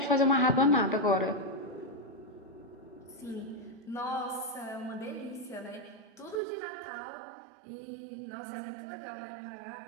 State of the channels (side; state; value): left; drops out; at 6.4 s